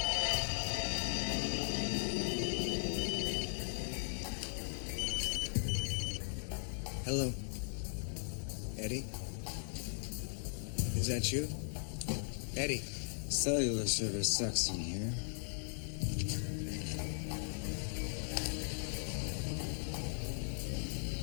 Hello. Eddie? Is that you? Eddie. Cellular service sucks in here.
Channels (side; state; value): right; silent; digital silence